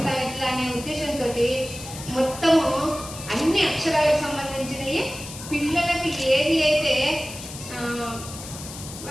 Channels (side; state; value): left; noise; hiss, 12 dB below the sound